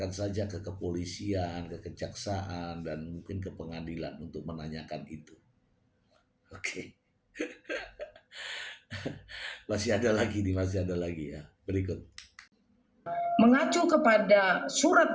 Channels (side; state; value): both; identical; correlation 1.00